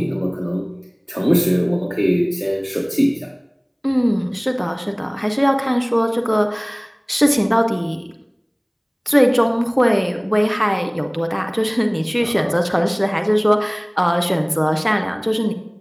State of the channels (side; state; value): both; identical; correlation 1.00